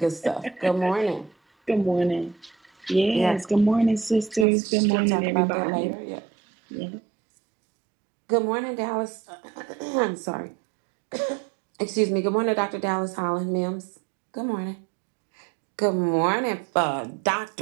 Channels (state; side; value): drops out; left; at 4.5 s